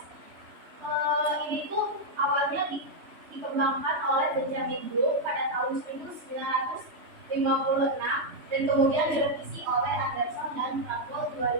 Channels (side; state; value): left; late; 3.3 ms